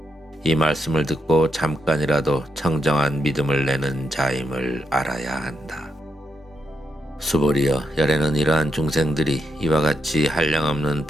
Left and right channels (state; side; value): normal; both; correlation 0.82